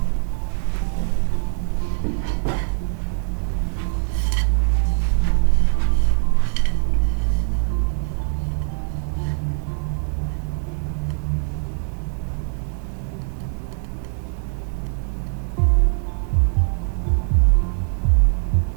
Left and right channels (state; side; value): silent; left; 60 dB below the other